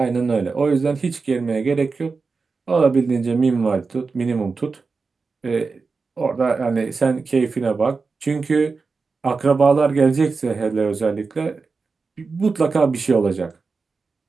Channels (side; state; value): left; quieter; 4.5 dB